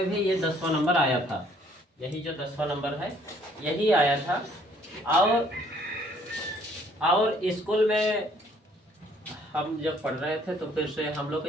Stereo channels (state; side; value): normal; both; correlation 0.61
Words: भी ये 10वां नंबर आया था। यही जो 10वां नंबर है यही आया था। और स्कूल में हम जब पढ़ रहे थे तो फिर से हम लोग